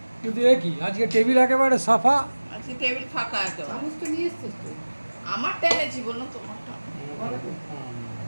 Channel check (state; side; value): inverted; both; correlation -1.00